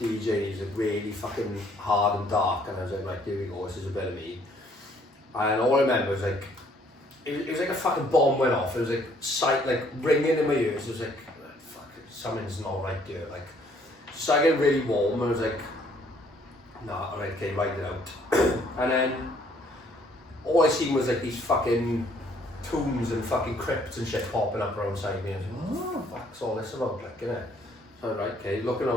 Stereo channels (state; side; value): normal; both; correlation 0.63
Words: DJ. He's like really fucking hard and dark, and I was like, right, here we go, this is a bit of me. And all I remember was like, it was like a fucking bomb went off. It was like ringing in my ears. It was like, fuck, something's not right here. Like, so I get really warm, and I was like, nah, alright, okay, write it out. And then all I seen was like these fucking tombs and fucking crypts and shit popping up around side me. I was like, what the fuck's all this about, like, innit? So right, okay, looking